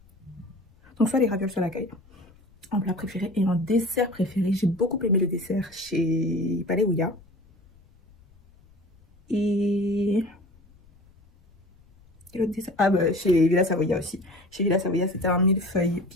Donc, soit les ravioles, soit la caille. En plat préféré. Et en dessert préféré, j'ai beaucoup aimé le dessert chez Palais Ouya. Et l'autre dessert, chez Villa Savoia aussi. Chez Villa Savoia, c'était un millefeuille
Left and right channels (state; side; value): noise; left; rumble, 29 dB below the sound